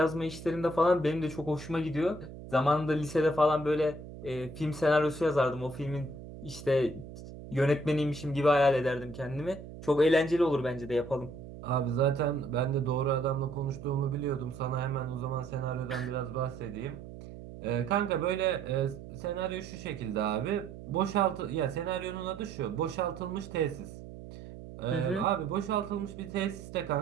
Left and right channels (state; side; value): noise; right; hum, 14 dB below the sound